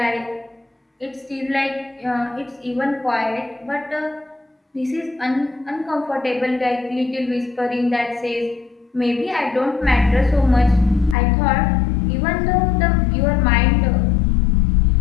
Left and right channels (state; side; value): drops out; right; at 11.2 s